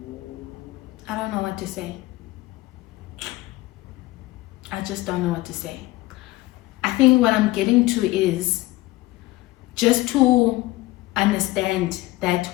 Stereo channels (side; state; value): right; quieter; 18.9 dB